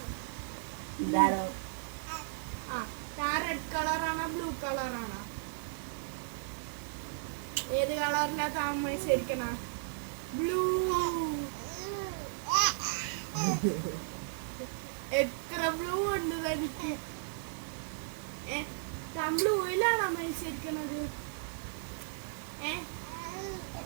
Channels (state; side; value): silent; left; 54 dB below the other